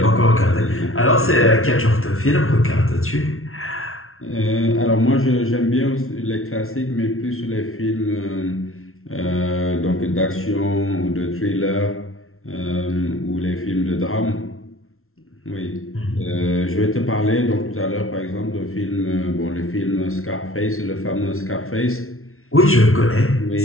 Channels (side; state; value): right; late; 0.62 ms